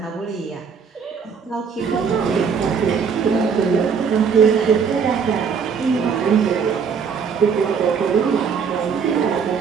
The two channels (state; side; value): quieter; left; 6.3 dB